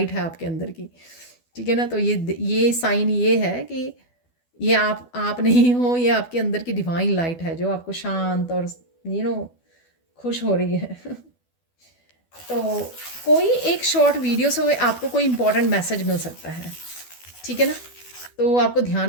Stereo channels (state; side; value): late; right; 12 ms